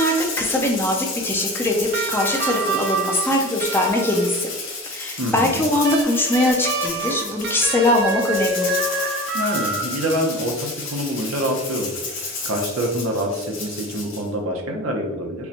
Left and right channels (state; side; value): normal; both; correlation 0.34